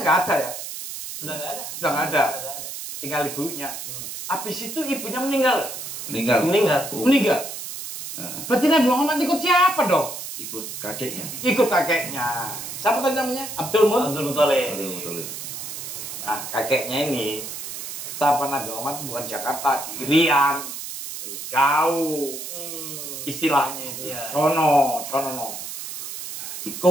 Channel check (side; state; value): right; noise; hiss, 8 dB below the sound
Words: nggak ada ya, Sudah nggak ada. Sudah nggak ada. Sudah nggak ada. tinggal ibunya. Habis itu ibunya meninggal. Meninggal. Meninggal. Meninggal. Nah, Berarti Nabi Muhammad ikut siapa dong? ikut kakeknya. Ikut kakeknya. Siapa tadi namanya? Abdul Muthalib. Abdul Muthalib. Abdul Muthalib. Nah, kakeknya ini siapa Nabi Muhammad bukan Jakarta, di Irian. Jauh istilahnya itu. Iya. Sono. Nah,